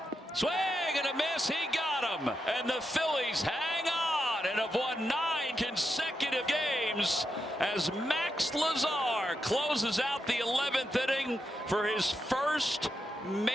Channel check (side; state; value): both; normal; correlation 0.85